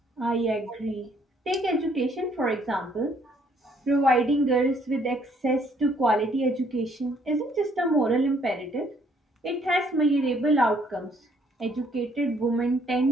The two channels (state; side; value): normal; both; correlation 0.65